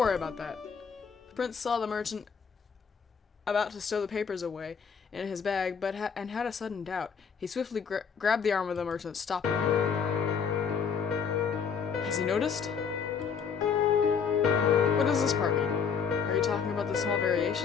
worry about that. The prince saw the merchant about to stow the papers away in his bag, but had a sudden doubt. He swiftly grabbed the arm of the merchant, stopping him. Has he noticed? What does this part mean? Are you talking about the small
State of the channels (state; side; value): quieter; right; 6.5 dB